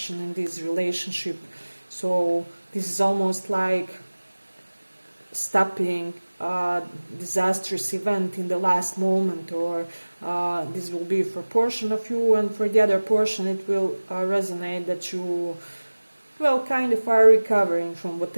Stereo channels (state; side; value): inverted; both; correlation -1.00